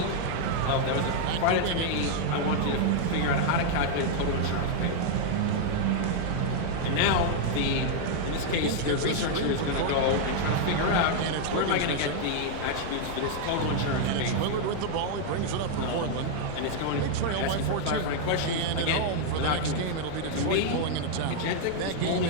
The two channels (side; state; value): both; different; correlation 0.00